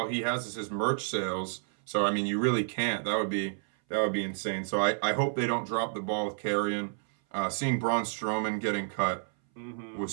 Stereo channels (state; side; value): silent; left; 58 dB below the other